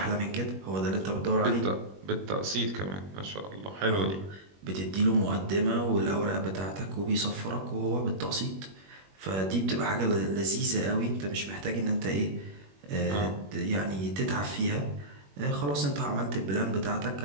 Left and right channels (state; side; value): late; left; 21 ms